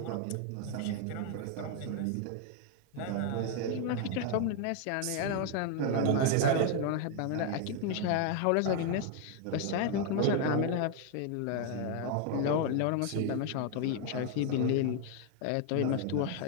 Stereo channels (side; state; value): both; different; correlation 0.00